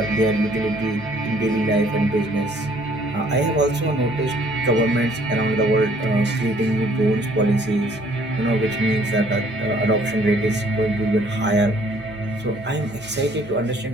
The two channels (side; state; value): both; normal; correlation 0.60